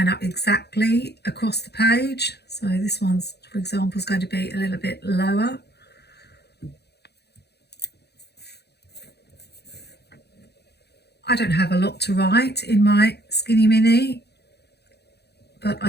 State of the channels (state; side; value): late; right; 0.48 ms